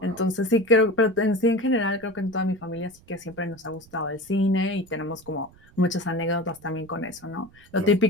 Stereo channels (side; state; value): right; noise; rumble, 26 dB below the sound